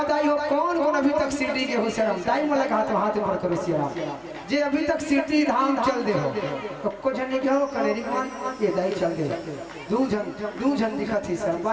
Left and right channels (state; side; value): identical; both; correlation 1.00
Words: ताई हो कौन कौन अभी तक सिटी के हो शरम दाई मला हाथ ऊपर करो सियाराम जे अभी तक सिटी धाम चल दे हो तो कुछ नहीं कहो कलेरी मान ये दाई चल दे दू जन दिखत ही सर